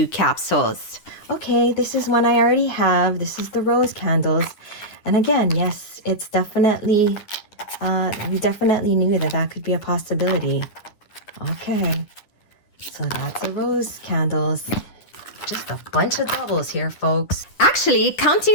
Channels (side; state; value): right; late; 10 ms